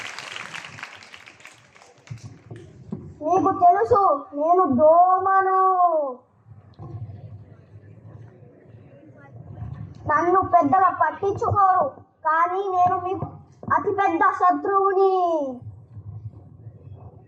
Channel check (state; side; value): identical; both; correlation 1.00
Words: మీకు తెలుసు, నేను దోమను. నన్ను పెద్దగా పట్టించుకోరు, కానీ నేను మీకు అతిపెద్ద శత్రువుని.